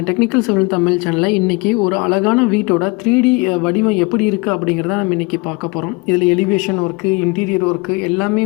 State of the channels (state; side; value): quieter; right; 27.3 dB